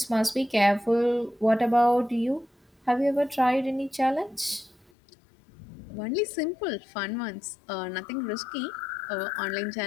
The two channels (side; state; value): right; drops out; at 4.9 s